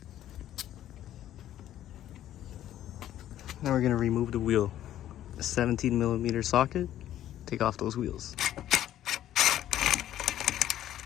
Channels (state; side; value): quieter; right; 12.3 dB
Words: Now we're gonna remove the wheel. A 17mm socket. Take off those wheels.